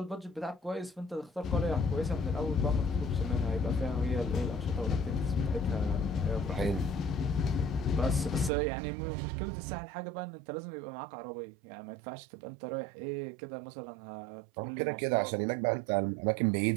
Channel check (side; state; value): left; drops out; at 8.5 s